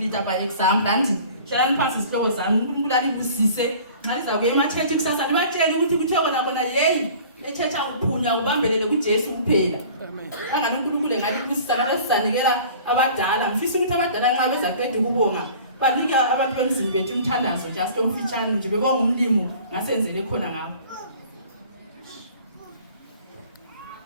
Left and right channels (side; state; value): both; inverted; correlation -0.46